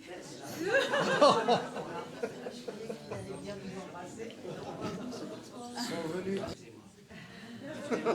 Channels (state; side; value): identical; both; correlation 1.00